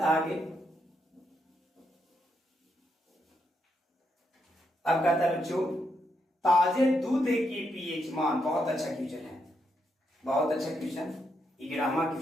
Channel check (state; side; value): normal; both; correlation 0.80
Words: है आगे? अब कहता है बच्चों, ताजे दूध की पीएच मान। बहुत अच्छा क्वेश्चन है, बहुत अच्छा क्वेश्चन, 11वां